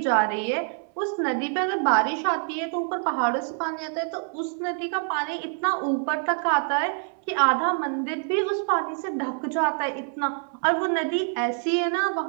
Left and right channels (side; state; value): left; silent; 55 dB below the other